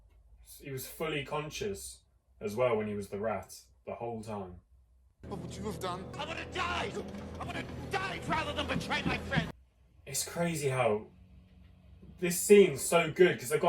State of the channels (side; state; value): both; identical; correlation 1.00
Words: He was fully conscious as well when he was the rat the whole time. What would you have done? I would have died! I would have died rather than betray my friend! It's crazy how this scene's so good because they've